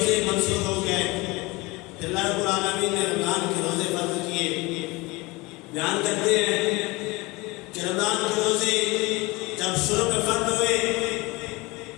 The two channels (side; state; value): right; quieter; 23.5 dB